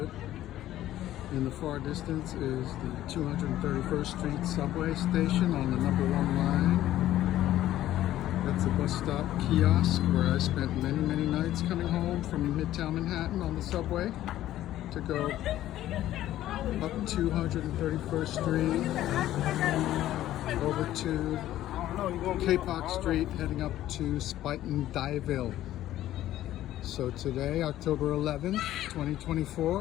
In the far distance is the 231st Street subway station on the #1 line. That's a bus stop kiosk where I spent many nights coming home from Midtown Manhattan on the subway to go up 231st Street, over to K-Park Street, heading up to Spuyten Duyvil. So today, October 11th,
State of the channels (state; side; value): quieter; right; 13.5 dB